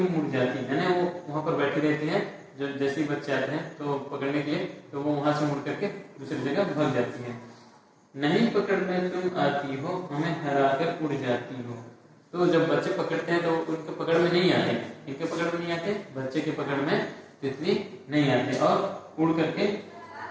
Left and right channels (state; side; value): identical; both; correlation 1.00